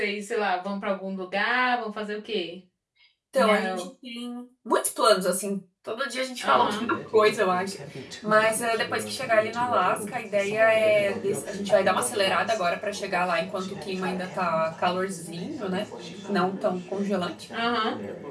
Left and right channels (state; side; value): identical; both; correlation 1.00